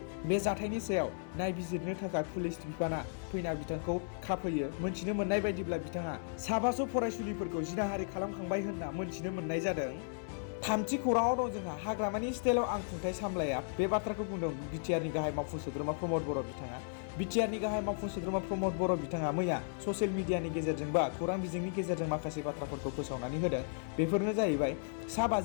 बे जाथायनि सायाव नायबिजिरनो थाखाय पुलिस बिफाना फैना बिथांखौ खाफैयो मोनथिनो मोननाय बायदिब्ला बिथाङा साबासो फरायसुलिफोरखौ जिनाहारि खालामखांबाय होनना मोनथिनो मोननाय जादों थामथि खौराङाव दं जोंहा हाग्रामानि स्टाइलाव आं खुंथाय सामलाया बे बाथ्राखौ बुंदों BTR नि गाहाय मावफुं सोद्रोमा प्रमद बर' बिथाङा BTR नि गाहाय मावफुं सोद्रोमा प्रमद बर' बिथाङा मैया ससियेल मिडियानि गेजेरजों बा खौरां बिजोंनि गेजेरजों माखासे बाथ्राफोरखौ फोसावनानै होदों बेफोरनो जाहैबाय सा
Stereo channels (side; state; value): right; silent; 54 dB below the other